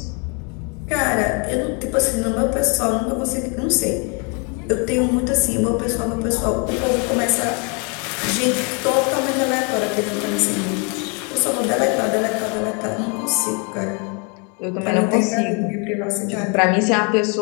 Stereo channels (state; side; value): quieter; right; 34.8 dB